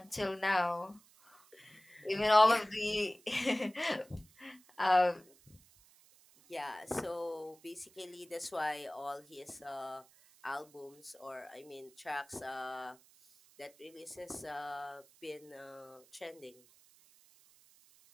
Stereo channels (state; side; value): noise; right; hiss, 27 dB below the sound